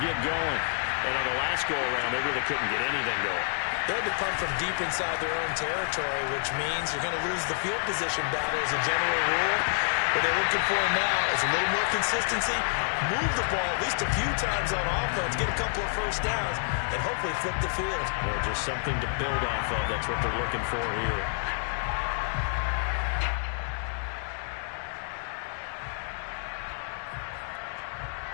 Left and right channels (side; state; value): right; silent; digital silence